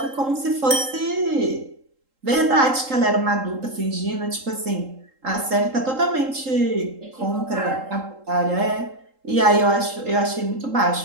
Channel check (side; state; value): left; late; 3.8 ms